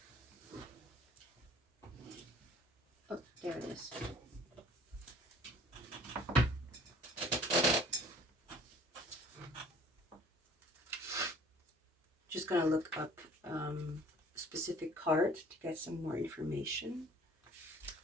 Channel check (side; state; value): both; normal; correlation 0.51